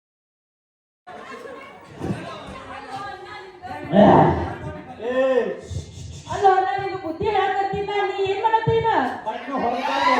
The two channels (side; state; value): both; identical; correlation 1.00